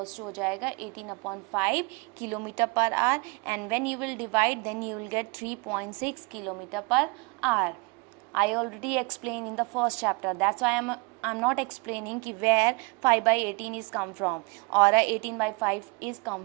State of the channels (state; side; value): quieter; left; 30.2 dB